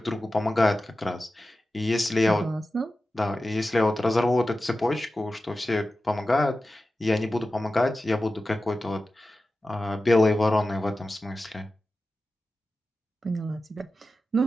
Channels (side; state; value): both; normal; correlation 0.94